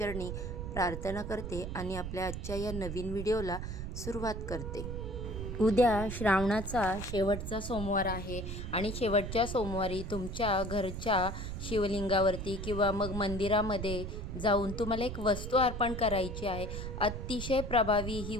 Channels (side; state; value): right; noise; rumble, 6 dB below the sound